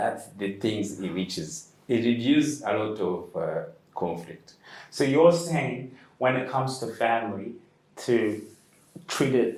the things it reduces. It reduces a lot of conflict. So you're saying when it comes to family, to treat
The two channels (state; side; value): identical; both; correlation 1.00